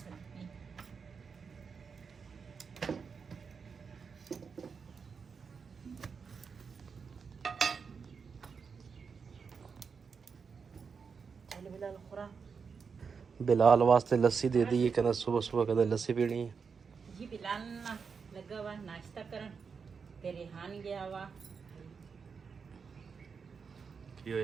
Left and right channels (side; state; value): left; quieter; 5.7 dB